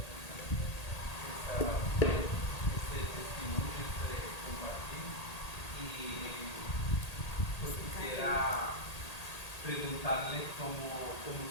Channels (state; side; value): late; right; 1.8 ms